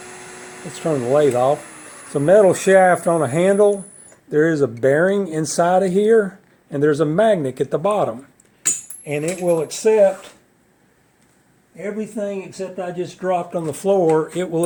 Let's turn the lathe off. It's a metal shaft on a handle. There is a bearing inside of here, and there's a magnet at the bottom, and it will accept everything except I just dropped on the floor. It will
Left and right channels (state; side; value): identical; both; correlation 1.00